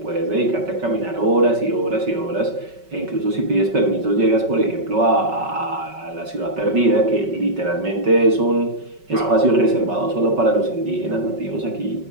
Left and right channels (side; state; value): left; late; 5.3 ms